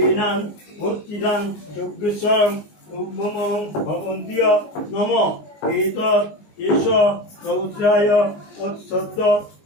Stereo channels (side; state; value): right; late; 19 ms